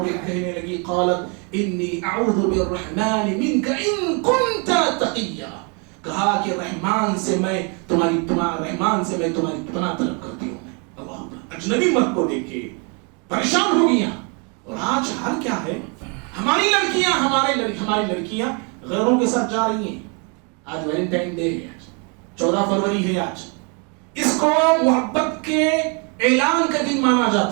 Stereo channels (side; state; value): left; quieter; 34.8 dB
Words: کے کہنے لگی قالت انی اعوذ بالرحمن منک ان کنت تقیا، کہا کہ رحمان سے میں تمہاری پناہ طلب کرتی ہوں۔ اللہ، اجنبی مرد کو دیکھ کے پریشان ہو گیا۔ اور آج حال کیا ہے، ہماری لڑکیاں غیروں کے ساتھ جا رہی ہیں۔ آج ویلنٹائن ڈے ہے، 14 فروری ہے آج، اس کو محبت کے اعلان کا دن مانا